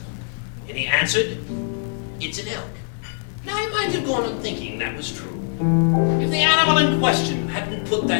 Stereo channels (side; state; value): right; silent; digital silence